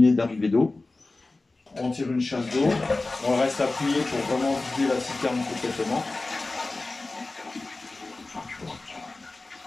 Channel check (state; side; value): quieter; right; 3.3 dB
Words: d'arrivée d'eau. On tire une chasse d'eau, on reste appuyé pour vraiment vider la citerne complètement.